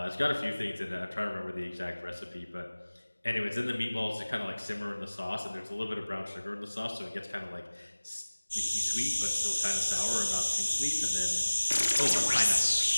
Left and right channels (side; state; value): both; inverted; correlation -1.00